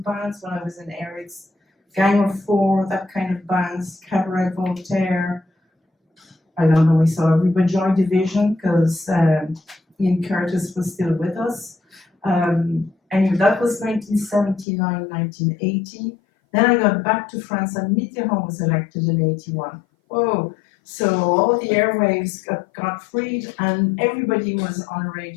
bands when I was in Eric's. Gang of Four, that kind of bands, Cabaret Voltaire. I don't know, we saw River Joy Division, because Ian Curtis was still with us. Anyway, that was 1979, 1980. Then I got back to France, and Mitterrand was elected in 81. Whoa. So all the airwaves got freed, and everybody was on a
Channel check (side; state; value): right; drops out; at 14.7 s